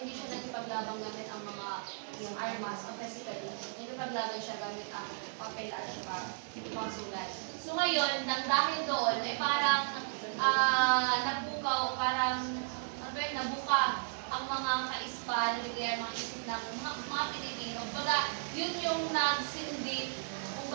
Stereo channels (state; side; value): silent; left; digital silence